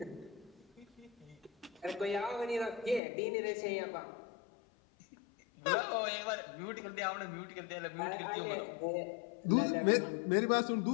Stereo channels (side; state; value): right; drops out; at 3.0 s